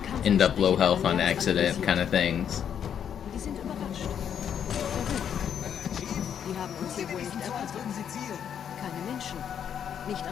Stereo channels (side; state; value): right; quieter; 8.6 dB